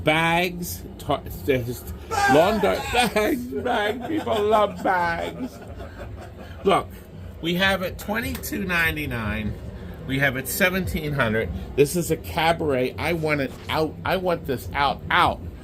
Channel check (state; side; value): identical; both; correlation 1.00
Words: Lawn dart bags. People love bags. Look, we have it $22.99. We have it $1,700. This is a cabaret. I want it out. I want this out.